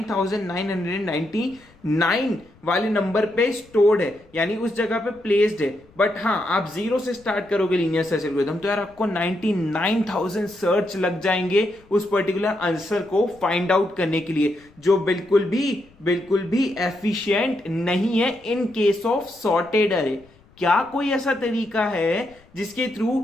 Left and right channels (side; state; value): left; noise; rumble, 29 dB below the sound